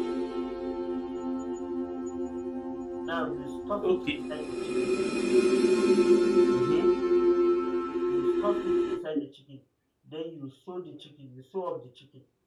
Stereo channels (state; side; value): identical; both; correlation 1.00